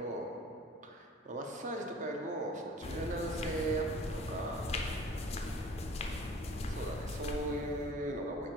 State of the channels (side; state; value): both; normal; correlation 0.48